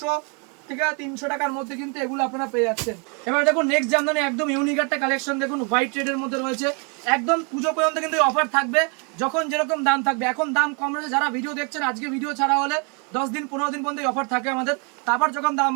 থেকে 300 টাকার মধ্যে কিন্তু এগুলো আপনারা পেয়ে যাচ্ছেন। এবার দেখুন নেক্সট জামদানি একদম ইউনিক একটা কালেকশন, দেখুন হোয়াইট রেডের মধ্যে রয়েছে, একদম পুজো পর্যন্ত কিন্তু অফার থাকবে, যখন যেরকম দাম থাকবে। এখন দাম কম রয়েছে, যারা ভিডিও দেখছেন আজকে ভিডিও ছাড়া হলে 10 দিন 15 দিন পর্যন্ত অফার থাকে আমাদের, তারপর যখন দাম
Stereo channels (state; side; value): quieter; left; 35.4 dB